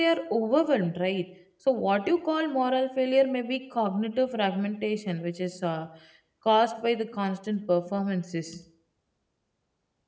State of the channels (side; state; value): both; identical; correlation 1.00